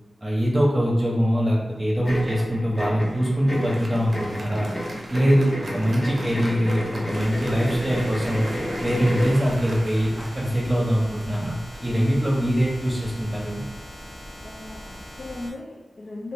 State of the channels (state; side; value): normal; both; correlation 0.96